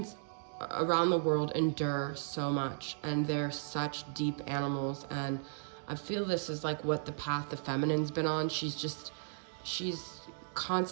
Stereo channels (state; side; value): silent; left; digital silence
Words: around the world endure so much, and they're such deep animals. And I feel this is like what the path the feminine's been on. She's